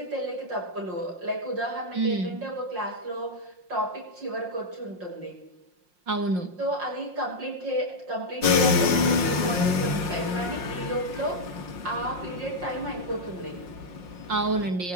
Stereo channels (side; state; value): left; late; 5.6 ms